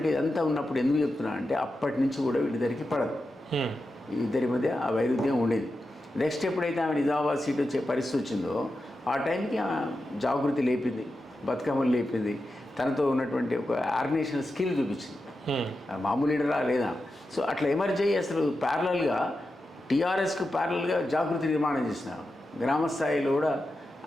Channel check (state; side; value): normal; both; correlation 0.90